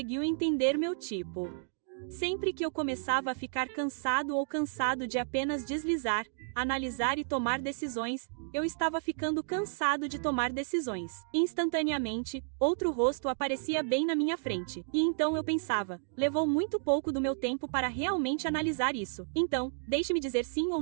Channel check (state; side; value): silent; left; digital silence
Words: entender meu tipo. Sempre que eu começava a ficar cansado ou cansado de apenas deslizar, analisar e tomar decisões, eu estava ficando cansado de tomar decisões. Instantaneamente, outro rosto aparecia bem na minha frente. E então eu pensava, levou muito pouco do meu tempo para realmente analisar isso. Então, deixe-me dizer sim ou